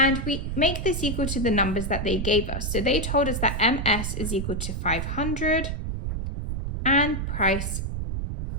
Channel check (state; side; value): noise; right; rumble, 3 dB below the sound